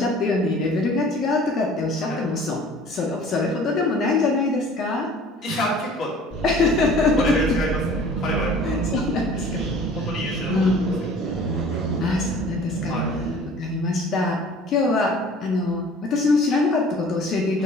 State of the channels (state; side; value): normal; both; correlation 0.48